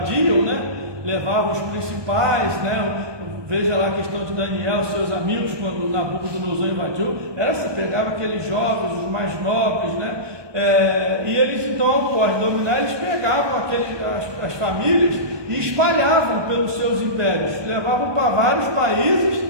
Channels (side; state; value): left; late; 1.2 ms